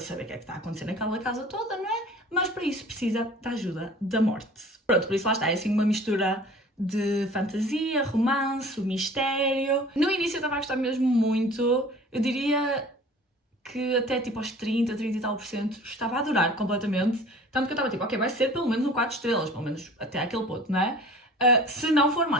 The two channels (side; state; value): both; normal; correlation 0.45